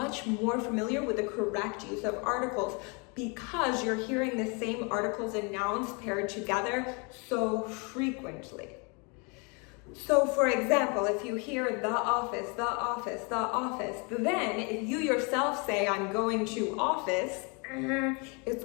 more familiar with the correct use of articles because you're hearing the same articles and nouns paired together so frequently. So for example, if you hear the office, the office, the office, then if you yourself say, I'm going to office, it's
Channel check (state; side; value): quieter; right; 32.8 dB